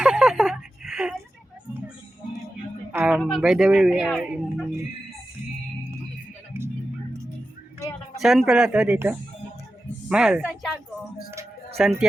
By the way, we are in... Saan pala to dito? Mahal. Santiago.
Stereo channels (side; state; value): both; normal; correlation 0.92